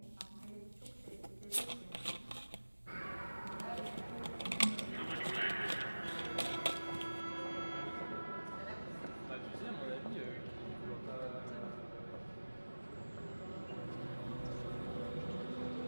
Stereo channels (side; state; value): both; inverted; correlation -1.00